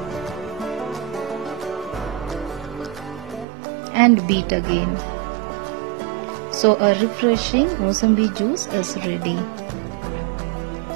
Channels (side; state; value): left; drops out; at 3.5 s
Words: and beat again. So a refreshing Musambi juice is ready.